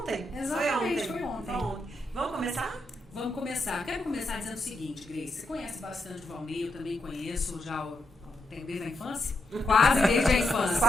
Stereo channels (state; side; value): normal; both; correlation 0.83